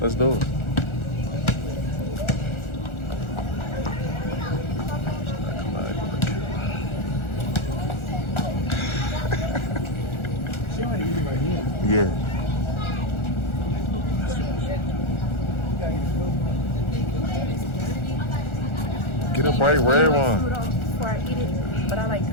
let's do it. Yeah. Get a bright red one. Before I eat it, but I like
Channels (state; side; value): late; right; 1.4 ms